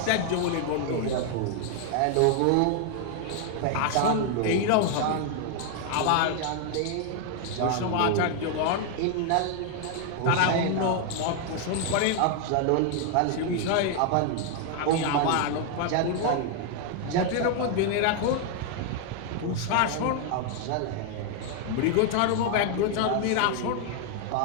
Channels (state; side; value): different; both; correlation 0.00